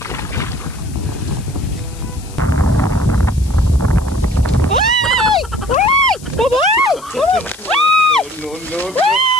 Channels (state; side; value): noise; left; hiss, 20 dB below the sound